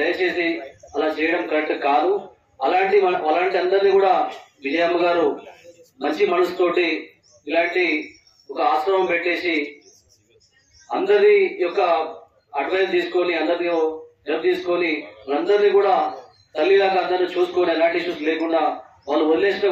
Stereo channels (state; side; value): identical; both; correlation 1.00